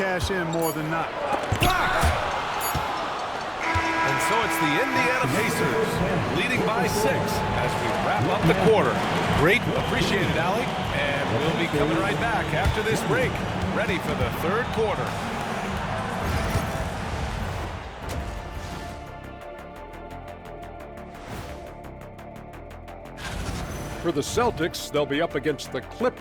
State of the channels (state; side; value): identical; both; correlation 1.00